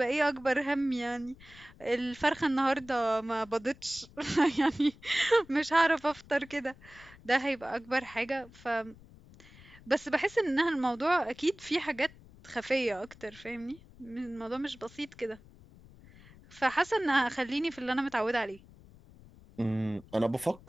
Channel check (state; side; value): noise; left; rumble, 22 dB below the sound